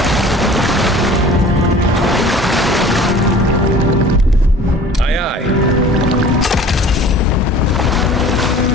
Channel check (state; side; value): normal; both; correlation 0.46